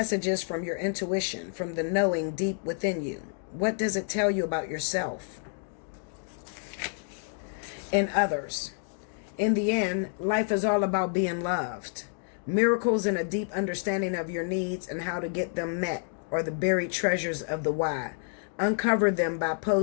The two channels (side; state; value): right; silent; 59 dB below the other